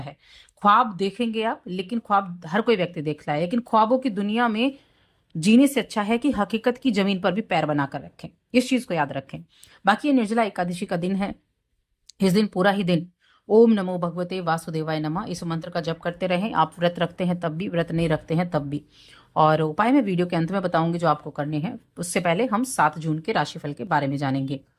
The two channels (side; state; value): both; identical; correlation 1.00